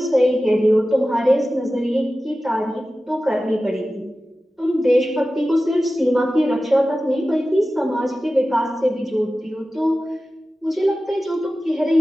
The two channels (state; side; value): normal; both; correlation 0.95